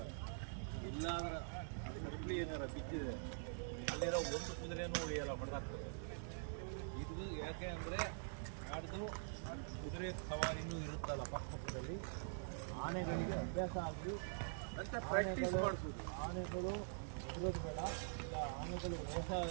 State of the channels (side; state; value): left; silent; digital silence